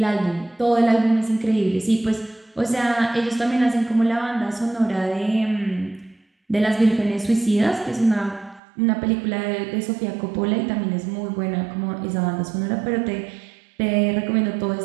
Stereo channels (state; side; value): drops out; left; at 8.6 s